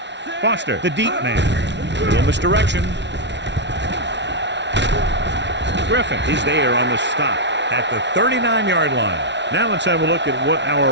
Foster, the deep man. Little misdirection. Griffin is there on the stop at the 39-yard line. Now let's have a look at what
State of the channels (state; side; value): late; left; 0.51 ms